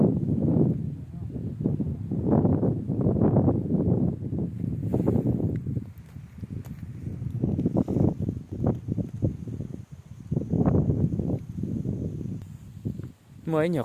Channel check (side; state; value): both; identical; correlation 1.00